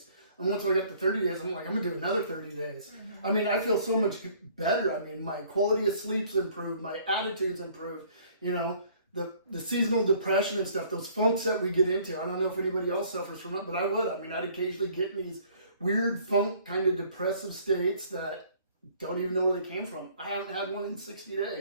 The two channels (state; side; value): inverted; both; correlation -0.57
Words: And once I got to 30 days, I'm like, I'm going to do another 30 days. Mm-hmm. I mean, I feel so much better. I mean, my quality of sleep's improved. My attitude's improved. You know, the seasonal depression and stuff, those funks that we get into. I don't know if anybody else suffers from it, but I would. I mean, I'd occasionally get in these weird funk kind of depressive states that don't even know where they came from. I haven't had one in 60